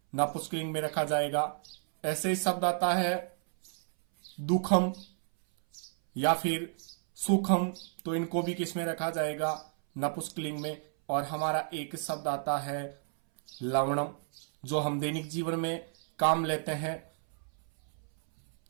नपुंसकलिंग में रखा जाएगा। ऐसे ही शब्द आता है दुखम या फिर सुखम, तो इनको भी किस में रखा जाएगा? नपुंसकलिंग में। और हमारा एक शब्द आता है लवणम, जो हम दैनिक जीवन में काम लेते हैं,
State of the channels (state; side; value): silent; left; 57 dB below the other